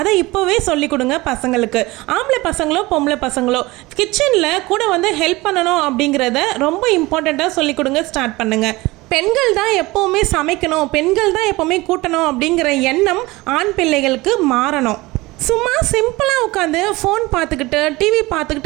இப்போவே சொல்லிக் கொடுங்க பசங்களுக்கு. ஆம்பளை பசங்களோ பொம்பளை பசங்களோ கிச்சனில் கூட ஹெல்ப் பண்ணணும் அப்படிங்கிறத ரொம்ப இம்பார்ட்டண்ட்டாக சொல்லிக் கொடுங்க, ஸ்டார்ட் பண்ணுங்க. பெண்கள் தான் எப்போவுமே சமைக்கணும், பெண்கள் தான் எப்போவுமே கூட்டணும் அப்படிங்கிற எண்ணம் ஆண் பிள்ளைகளுக்கு மாறணும். சும்மா சிம்பிளாக உட்காந்து ஃபோன் பார்த்துக்கிட்டு டிவி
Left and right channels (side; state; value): left; quieter; 21.1 dB